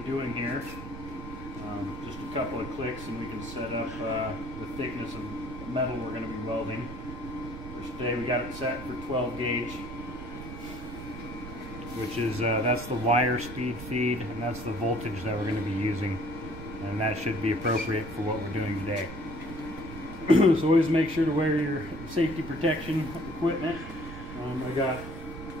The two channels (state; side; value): noise; right; rumble, 11 dB below the sound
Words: doing here. Just a couple of clicks and we can set up the thickness of metal we're going to be welding. For today we got it set for 12 gauge, which is that's the wire speed feed, and that's the voltage that we're going to be using, and that should be appropriate for what we're doing today. So always make sure to wear your safety protection equipment. I got